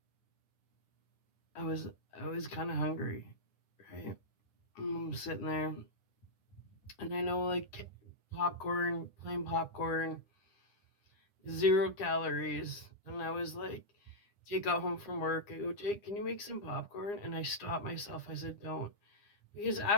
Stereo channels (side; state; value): right; late; 9.8 ms